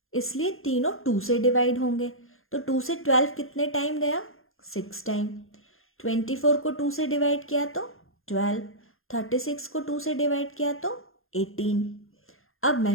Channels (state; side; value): late; right; 0.61 ms